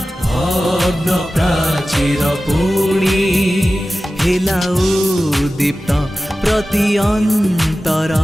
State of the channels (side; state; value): both; normal; correlation 0.95